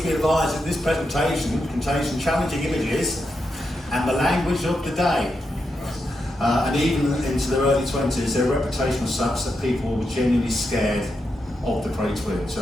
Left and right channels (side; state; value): both; normal; correlation 0.85